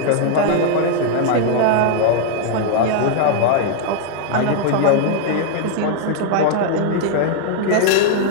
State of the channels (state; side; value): different; both; correlation 0.00